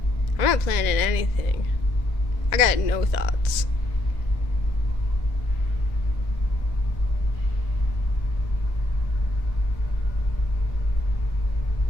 I'm not planning anything. I got no thoughts.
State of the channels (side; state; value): right; late; 1.9 ms